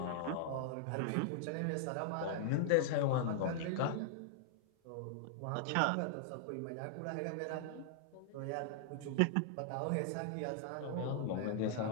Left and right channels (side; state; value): both; different; correlation -0.01